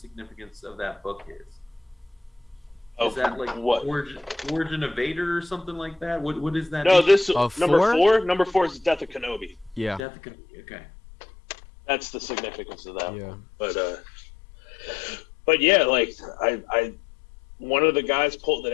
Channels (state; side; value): drops out; right; at 10.1 s